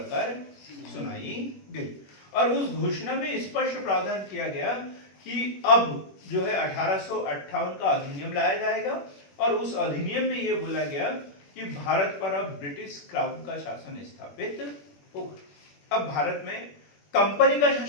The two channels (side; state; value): right; late; 21 ms